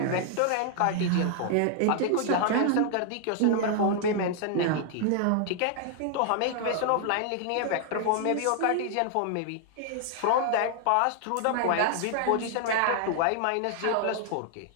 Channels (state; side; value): different; both; correlation 0.00